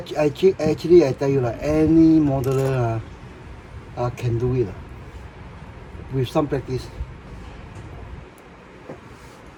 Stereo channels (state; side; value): identical; both; correlation 1.00